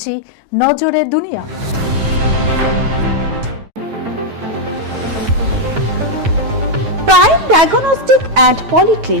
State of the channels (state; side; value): late; left; 9.2 ms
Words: নজরে দুনিয়া। প্রাইম ডায়াগনস্টিক অ্যান্ড